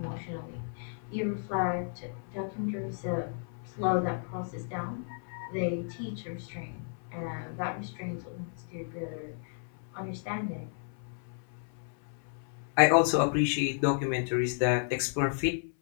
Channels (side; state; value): right; silent; 56 dB below the other